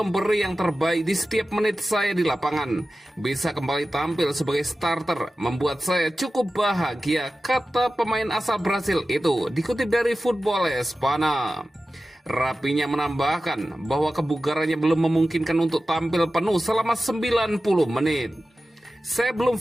yang terbaik di setiap menit saya di lapangan. Bisa kembali tampil sebagai starter membuat saya cukup bahagia, kata pemain asal Brasil itu, dikutip dari Football Espana. Rapinya menambahkan bahwa kebugarannya belum memungkinkan untuk tampil penuh selama 90 menit. Saya belum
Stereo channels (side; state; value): both; normal; correlation 0.94